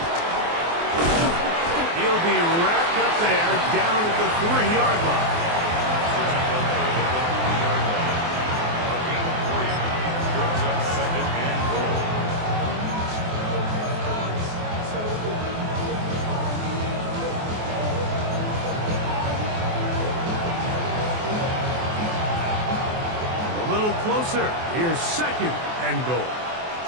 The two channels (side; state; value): left; late; 24 ms